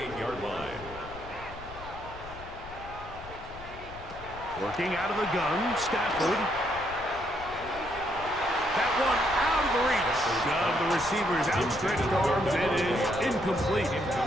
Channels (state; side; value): noise; left; rumble, 15 dB below the sound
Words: line. Working out of the gun, Stafford. That one out of the reach of the receiver's outstretched arms. It is incomplete.